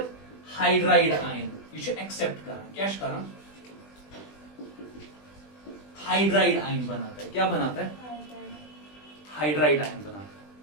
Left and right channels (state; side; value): late; right; 20 ms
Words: हाइड्राइड आयन ये एक्सेप्ट कर क्या हाइड्राइड आयन बनाता है क्या बनाता है हाइड्राइड आयन बनाता